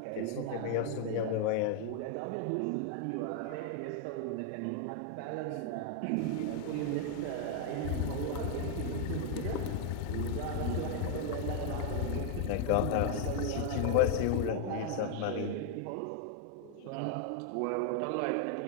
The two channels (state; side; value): different; both; correlation 0.00